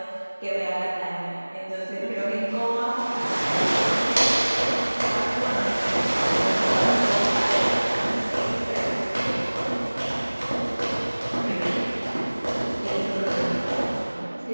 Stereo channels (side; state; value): both; inverted; correlation -1.00